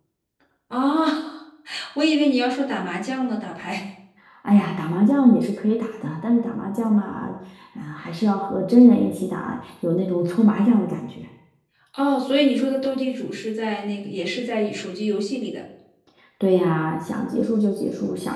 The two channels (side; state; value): both; identical; correlation 1.00